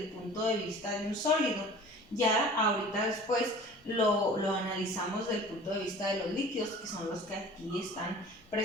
punto de vista de un sólido. Ya ahorita después lo analizamos desde el punto de vista de los líquidos, que son los que aquí están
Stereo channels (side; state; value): both; normal; correlation 0.44